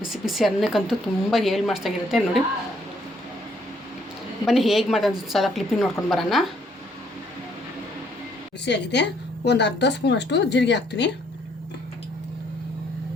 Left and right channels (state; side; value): normal; both; correlation 0.67